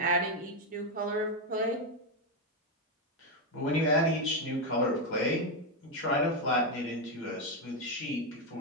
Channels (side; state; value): both; normal; correlation 0.06